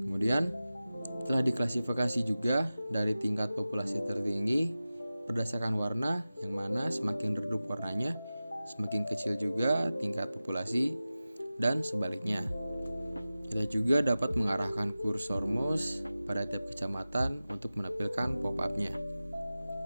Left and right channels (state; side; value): inverted; both; correlation -0.95